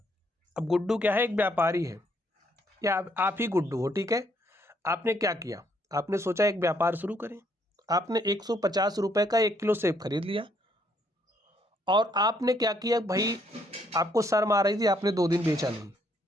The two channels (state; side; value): normal; both; correlation 0.70